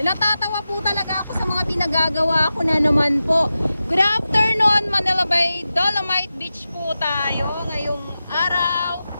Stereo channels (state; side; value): inverted; both; correlation -0.92